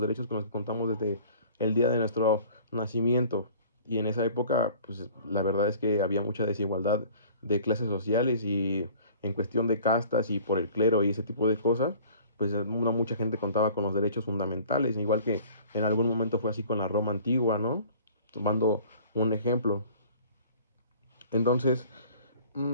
derechos con los que contamos desde el día de nuestro nacimiento. Y en esa época, pues la verdad es que había mucha desigualdad de clases sociales y en cuestión de castas y por el clero y ese tipo de cosas, pues no mucha gente contaba con los derechos fundamentales, igual que en algún momento fue así con la Roma antigua, ¿no? Tomando un ejemplo. Entonces,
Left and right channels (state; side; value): inverted; both; correlation -0.48